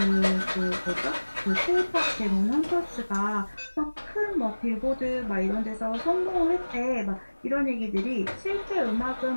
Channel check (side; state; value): both; inverted; correlation -1.00